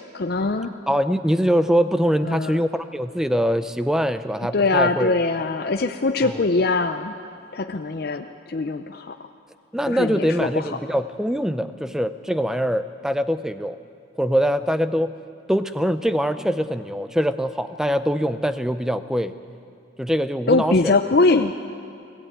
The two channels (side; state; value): both; normal; correlation 0.59